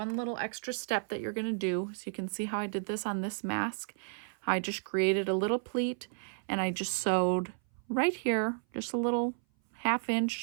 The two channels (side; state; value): left; silent; 56 dB below the other